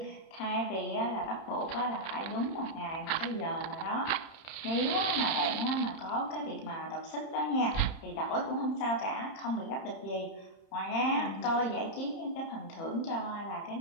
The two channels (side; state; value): right; late; 30 ms